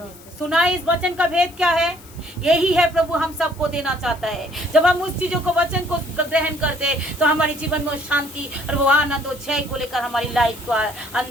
सुनाई इस वचन का भेद क्या है? यही है प्रभु हम सबको देना चाहता है। जब हम उस चीजों को वचन को ग्रहण करते तो हमारे जीवन में शांति और वो आनंद और जय को लेकर हमारी लाइफ को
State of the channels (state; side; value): noise; left; hiss, 22 dB below the sound